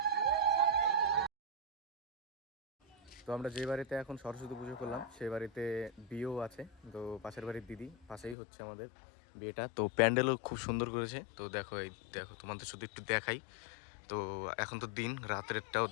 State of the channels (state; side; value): drops out; right; at 8.3 s